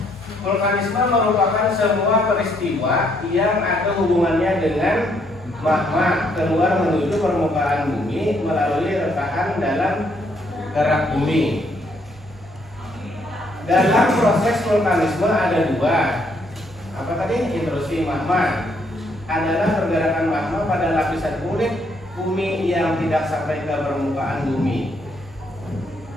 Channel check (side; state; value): both; normal; correlation 0.71